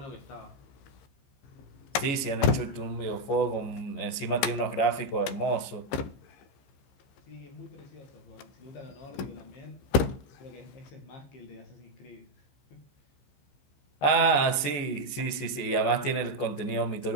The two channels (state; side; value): late; right; 15 ms